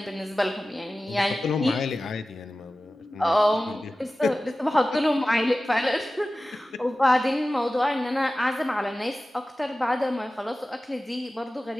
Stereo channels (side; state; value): both; normal; correlation 0.96